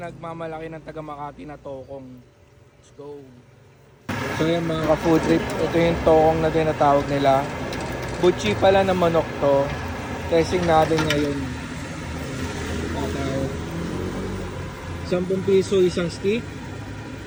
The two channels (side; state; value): both; identical; correlation 1.00